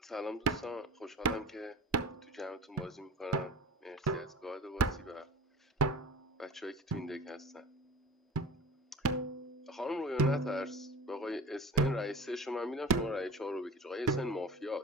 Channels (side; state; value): both; normal; correlation 0.37